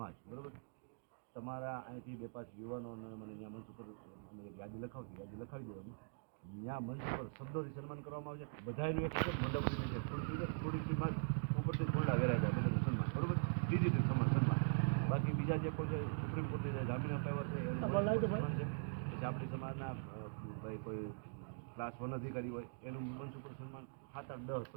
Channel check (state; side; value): silent; left; digital silence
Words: બરાબર. તમારા અહીંથી 2-5 યુવાનોને મને અહીંયા મંચ ઉપર અમે એક યાદી લખાવી દેવાની. ત્યાં મંચ ઉપર શબ્દોથી સન્માન કરવામાં આવશે. બધાનું એક છે મંડપનું છે થોડીક સીમાં ઉપરથી થોડા વેરાય જાય બધું સન્માન બરાબર, ડિજિટલ સન્માન. બાકી બીજા જે કોઈ સુપ્રીમ કોર્ટે જે જામીન અપાવ્યા છે એનું સન્માન છે. પછી આપણી સમાજના ભાઈ કોઈ ક્લાસ 1 અધિકારી હોય એનું મંચ ઉપર સન્માન 7, 8, 10,